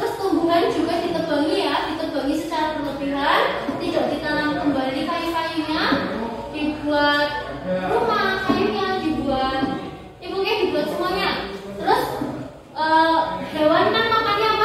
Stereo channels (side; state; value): both; identical; correlation 1.00